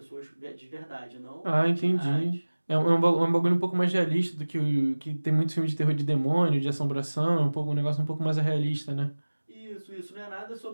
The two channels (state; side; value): inverted; both; correlation -1.00